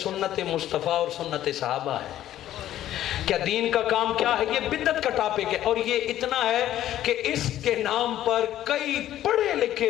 मुस्तफ़ा और सुन्नत सहाबा है? क्या दीन का काम क्या है? ये बिदत का टॉपिक है। और ये इतना है कि इसके नाम पर कई पढ़े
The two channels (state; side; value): quieter; right; 12.6 dB